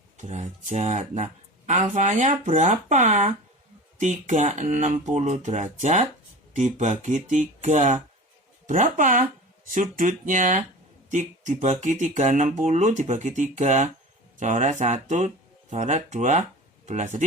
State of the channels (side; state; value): both; normal; correlation 0.35